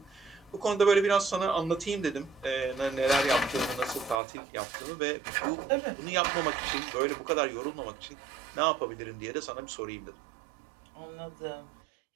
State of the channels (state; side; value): drops out; left; at 4.2 s